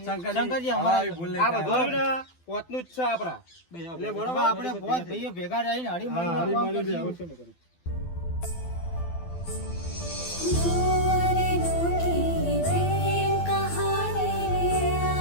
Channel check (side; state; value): right; late; 12 ms